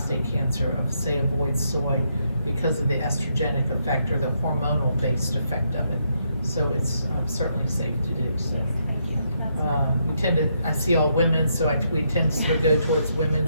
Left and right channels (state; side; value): inverted; both; correlation -0.77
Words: cancer of, say, avoid soy because of the estrogenic effect or the hormonal based effect of it. So it's certainly safe to do. So we tend to, I see all women, so we tend to sort of go towards